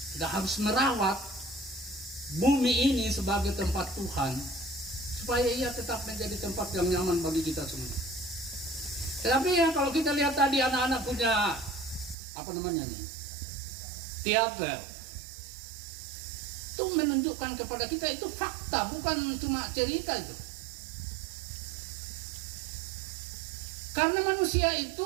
Kita harus merawat bumi ini sebagai tempat Tuhan supaya ia tetap menjadi tempat yang nyaman bagi kita semua. Tetapi ya kalau kita lihat tadi anak-anak punya teater, itu menunjukkan kepada kita itu fakta, bukan cuma cerita itu. Karena manusia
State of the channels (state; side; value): drops out; left; at 12.2 s